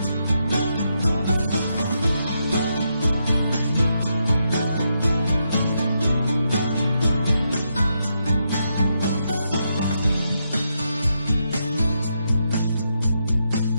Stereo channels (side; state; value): both; inverted; correlation -0.82